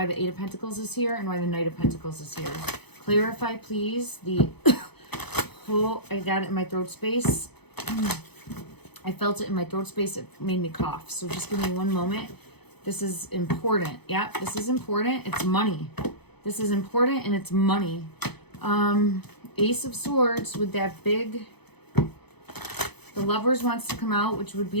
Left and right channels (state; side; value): late; right; 0.98 ms